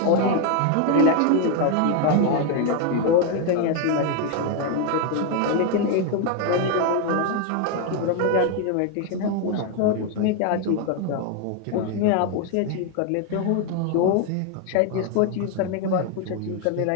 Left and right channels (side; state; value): both; different; correlation 0.01